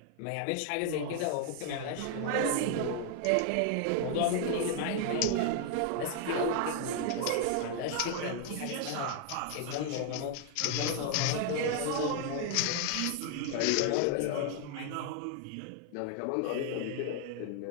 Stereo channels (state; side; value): different; both; correlation 0.00